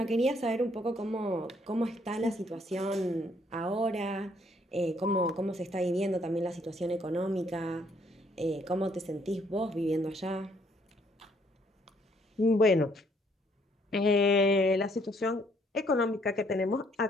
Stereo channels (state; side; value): normal; both; correlation 0.67